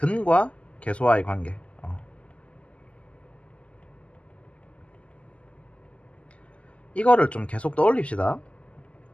개수와의 관계. 이거를 좀 계속 떠올립시다.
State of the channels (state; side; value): late; right; 0.061 ms